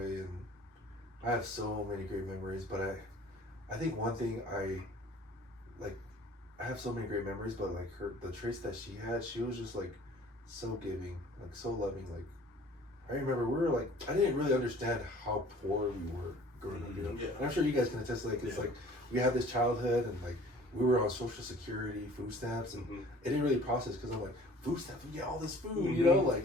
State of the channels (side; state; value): both; normal; correlation 0.50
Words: I have so many great memories. But I think one thing I have so many great memories, but like the traits that she had, she was just like so giving, like so loving. Like, I remember we were like, I didn't really understand how poor we were growing up, you know. Yeah. And I'm sure you guys can attest. Like, it's like we had this childhood, and like we were on Social Security, food stamps, and it didn't really process because I'm like, food stamps, we get all this food, you know.